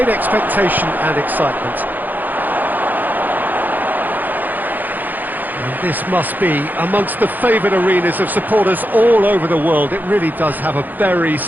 expectation and excitement. And this must be amongst the favoured arenas of supporters all over the world. It really does have a very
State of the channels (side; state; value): left; late; 0.085 ms